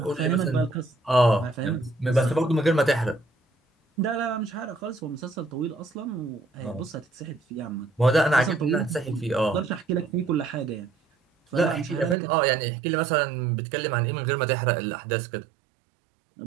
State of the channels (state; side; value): drops out; left; at 12.2 s